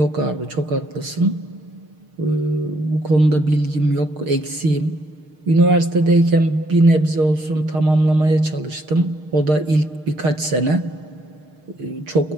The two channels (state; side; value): late; left; 6.5 ms